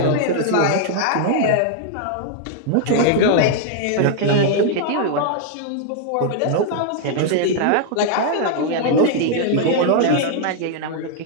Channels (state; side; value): different; both; correlation 0.00